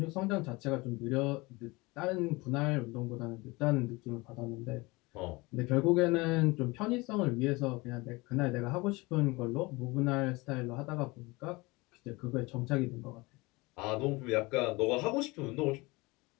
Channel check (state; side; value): quieter; right; 23.7 dB